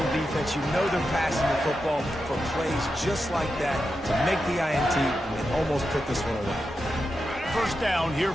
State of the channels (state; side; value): normal; both; correlation 0.88